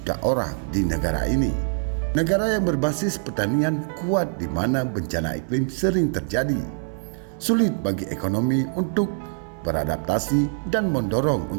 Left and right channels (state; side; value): silent; left; 58 dB below the other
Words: orang di negara ini. Negara yang berbasis pertanian kuat di mana bencana iklim sering terjadi. Sulit bagi ekonomi untuk beradaptasi dan mendorong